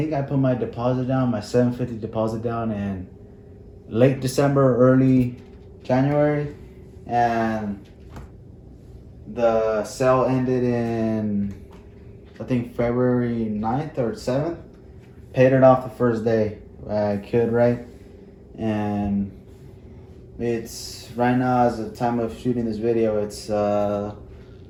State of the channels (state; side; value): identical; both; correlation 1.00